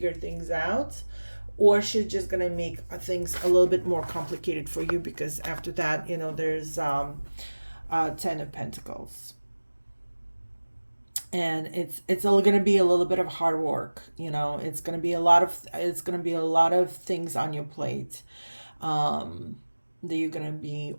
things out, or she's just gonna make things a little bit more complicated for you, because after that, there's 10 of Pentacles, and it's all gonna be a little bit of hard work. It's gonna be a lot of things on your plate that you're gonna be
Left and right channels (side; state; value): both; inverted; correlation -1.00